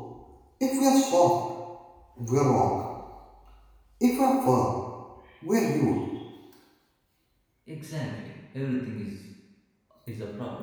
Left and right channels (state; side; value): identical; both; correlation 1.00